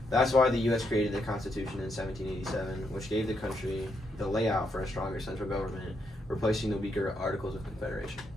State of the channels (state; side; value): normal; both; correlation 0.78